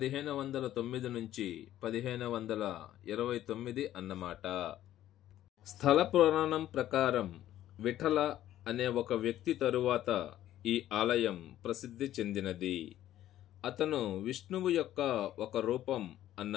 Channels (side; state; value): right; quieter; 12.9 dB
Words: నుంచి 1529 అన్నమాట. స్థల పురాణం ప్రకారం విఠల అనే ఒక వ్యక్తి తరువాత ఈ ఆలయం ప్రసిద్ధి చెందినది. అతను విష్ణువు యొక్క ఒక రూపం